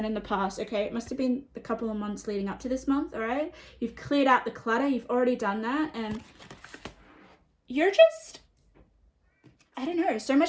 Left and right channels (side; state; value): both; identical; correlation 1.00